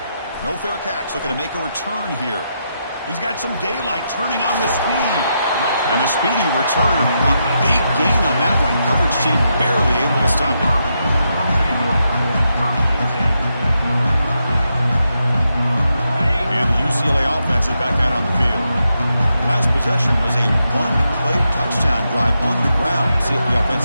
No fair catch, looking to make a return here. He's got some daylight turning on the speed. And the speedy returner, a big gain on that one. Coverage team barely able to stop it. And the UCLA offense is back out on the field. Last possession was a one-play touchdown drive on the ground. See if the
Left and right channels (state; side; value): inverted; both; correlation -0.83